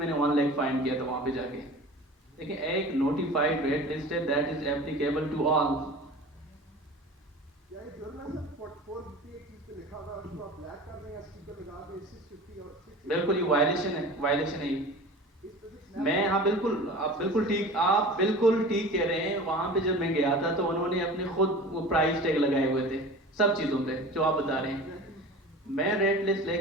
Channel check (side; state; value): both; normal; correlation 0.38